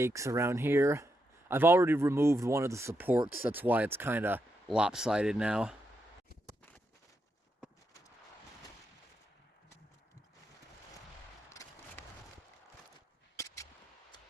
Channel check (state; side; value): normal; both; correlation 0.83